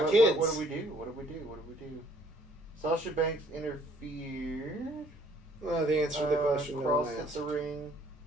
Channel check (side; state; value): both; normal; correlation 0.62